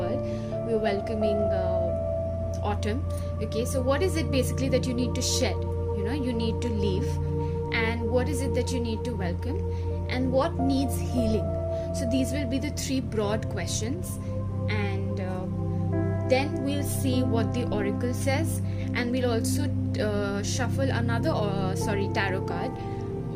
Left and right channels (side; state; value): both; identical; correlation 1.00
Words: we're welcoming autumn. So what is it basically that you need to shed? You need to leave. And what is it that you need to welcome? And what needs healing? So these will be the 3 broad questions. And then we'll see what the oracle says, and we'll also shuffle another tarot card